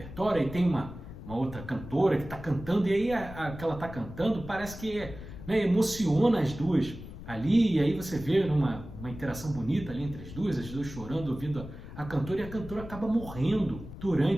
e tem uma outra cantora que está cantando, e aí a que ela está cantando parece que emociona as duas ali, e aí você vê uma interação bonita ali entre as duas chorando, ouvindo a cantora, e a cantora acaba morrendo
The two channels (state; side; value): noise; left; rumble, 12 dB below the sound